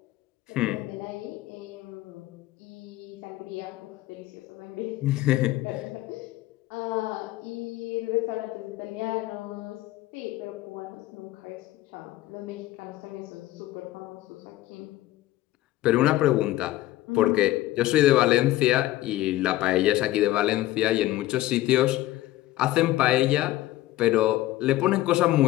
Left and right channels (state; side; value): quieter; right; 16.1 dB